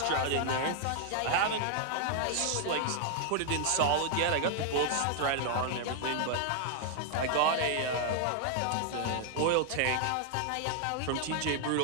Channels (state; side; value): different; both; correlation 0.00